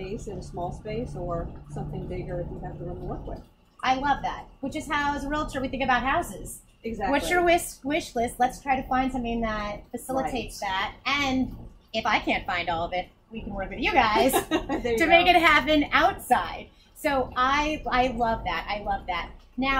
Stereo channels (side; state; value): both; identical; correlation 1.00